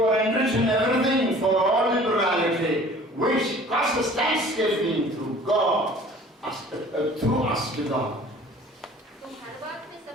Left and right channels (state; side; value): normal; both; correlation 0.48